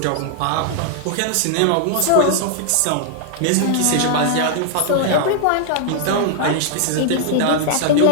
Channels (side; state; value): both; different; correlation -0.01